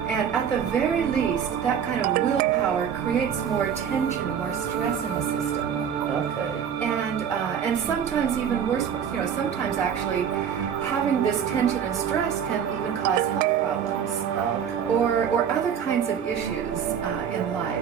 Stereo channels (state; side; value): quieter; left; 8.1 dB